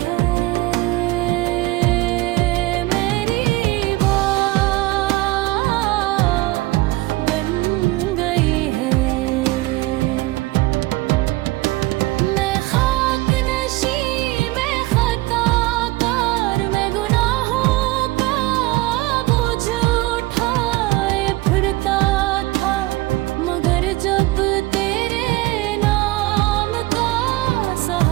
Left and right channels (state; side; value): quieter; left; 19.9 dB